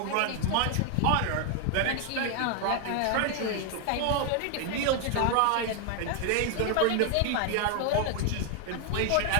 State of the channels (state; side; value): different; both; correlation 0.00